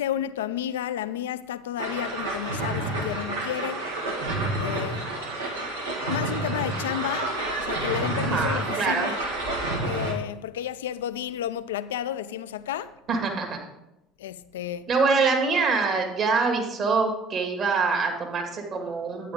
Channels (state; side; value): normal; both; correlation 0.31